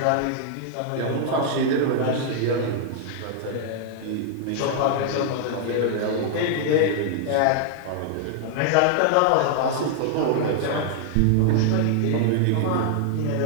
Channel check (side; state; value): both; different; correlation 0.00